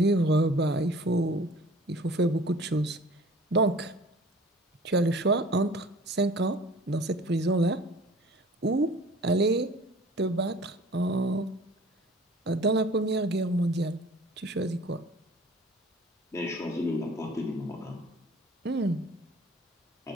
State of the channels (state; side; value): normal; both; correlation 0.47